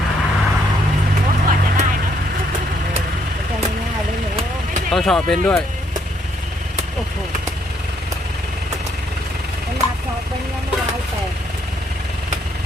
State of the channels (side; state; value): both; normal; correlation 0.71